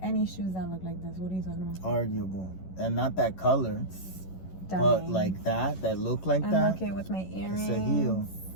any shoes that look like this. What are you talking about? Arguable. And not that color. But like that look like that. I'm okay with my earrings. It's a heel.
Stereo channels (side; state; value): right; late; 11 ms